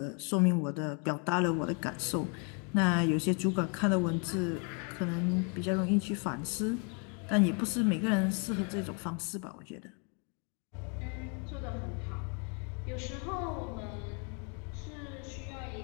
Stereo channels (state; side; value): quieter; right; 37.5 dB